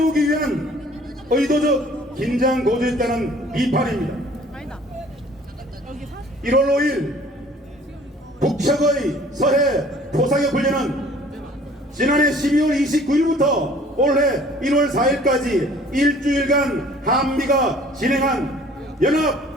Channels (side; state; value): both; normal; correlation 0.53